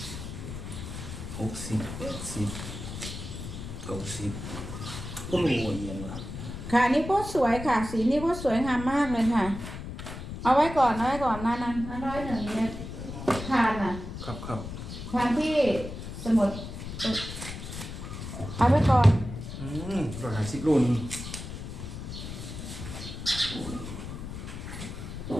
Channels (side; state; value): left; noise; rumble, 8 dB below the sound